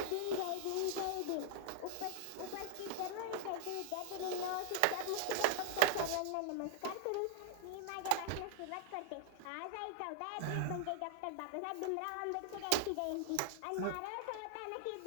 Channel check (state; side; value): different; both; correlation 0.00